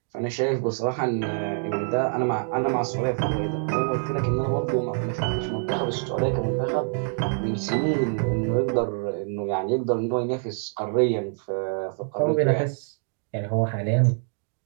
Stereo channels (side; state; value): left; silent; digital silence